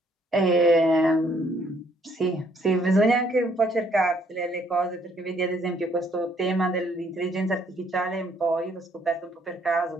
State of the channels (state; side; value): normal; both; correlation 0.66